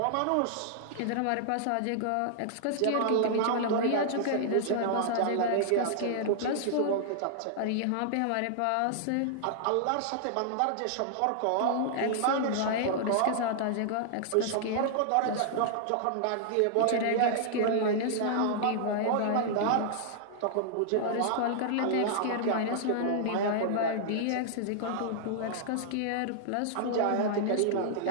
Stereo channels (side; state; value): both; different; correlation -0.01